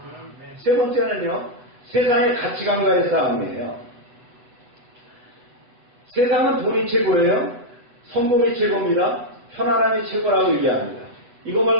세 번째는요. 세상의 가치관과의 싸움이에요. 세상은 돈이 최고예요. 성공이 최고입니다. 편안함이 최고라고 얘기합니다. 이거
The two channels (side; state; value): left; late; 8.3 ms